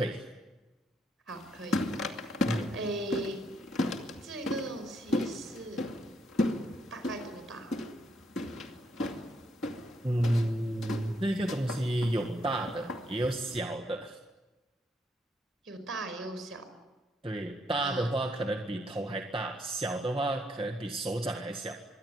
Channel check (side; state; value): both; normal; correlation 0.75